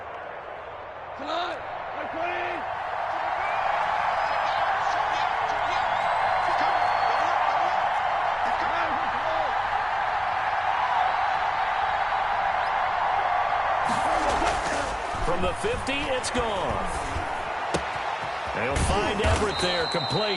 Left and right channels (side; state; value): both; identical; correlation 1.00